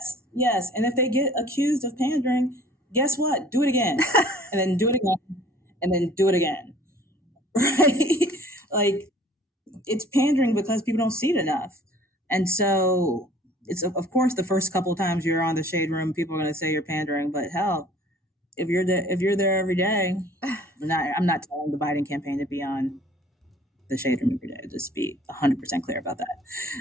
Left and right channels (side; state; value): both; normal; correlation 0.52